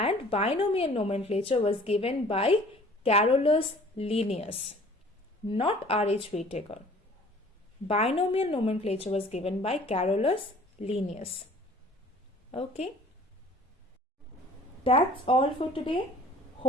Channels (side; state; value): both; normal; correlation 0.51